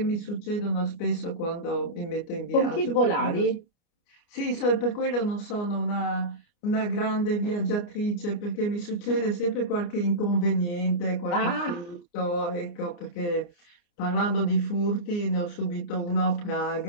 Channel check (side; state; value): right; late; 29 ms